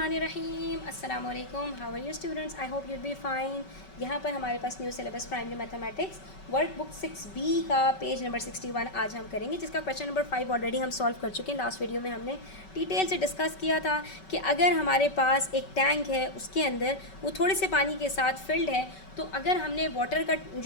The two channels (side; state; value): right; late; 5.3 ms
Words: अस्सलाम वालेकुम। How are you students? I hope you'll be fine. यहाँ पर हमारे पास new syllabus primary mathematics workbook 6B का पेज नंबर 61 आज हम करेंगे, जिसका क्वेश्चन नंबर 5 ऑलरेडी हम सॉल्व कर चुके हैं। लास्ट वीडियो में हमने डिटेल से डिस्कस किया था कि अगर हमारे पास एक टैंक है, उसके अंदर वो थोड़े से पानी के साथ फिल्ड है, तो अगर हमने वाटर का